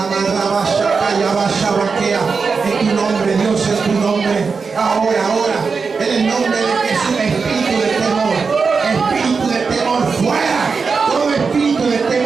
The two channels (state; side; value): quieter; left; 5.0 dB